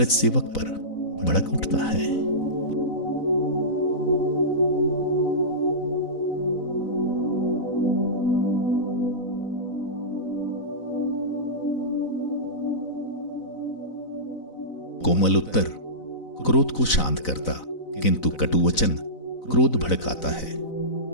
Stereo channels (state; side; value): late; right; 4.0 ms